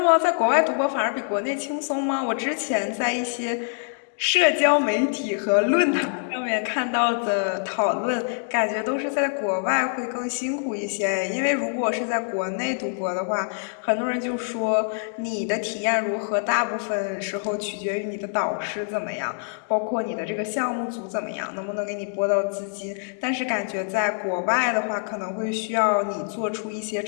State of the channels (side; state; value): right; silent; digital silence